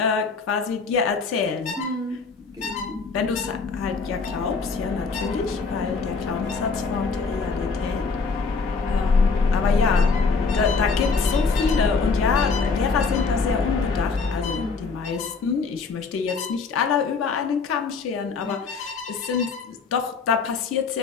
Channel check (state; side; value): quieter; right; 4.7 dB